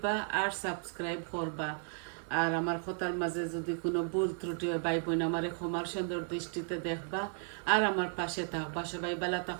আর সাবস্ক্রাইব করবা। আর আমার কথার মাঝে যদি কোনো ভুল ত্রুটি হয় ভাই বোন আমার ক্ষমার সুন্দর দৃষ্টিতে দেখবা আর আমার পাশে থাকবা। সবাই ভালো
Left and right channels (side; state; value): left; silent; 55 dB below the other